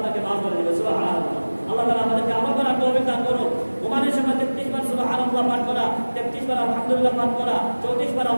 মাফ করে দিবেন। সুবহানাল্লাহ। আল্লাহ তাআলা আমাদেরকে আমল করার তৌফিক দান করুন। ঘুমানোর সময় 33 বার সুবহানাল্লাহ পাঠ করা, 33 বার আলহামদুলিল্লাহ পাঠ করা, 34 বার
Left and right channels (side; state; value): both; inverted; correlation -1.00